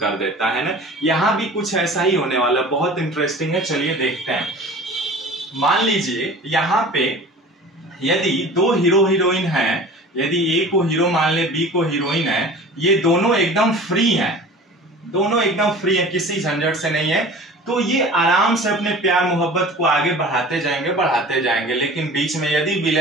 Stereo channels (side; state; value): both; normal; correlation 0.41